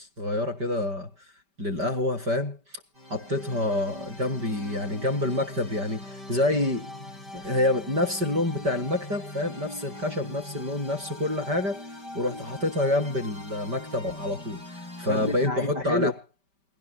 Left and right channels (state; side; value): late; left; 5.1 ms